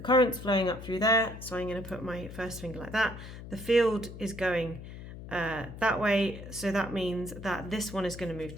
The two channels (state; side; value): noise; left; hum, 12 dB below the sound